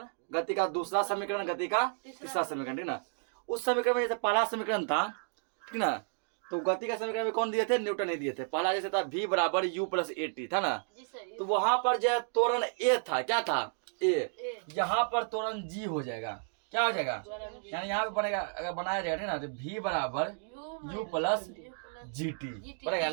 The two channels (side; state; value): left; silent; 56 dB below the other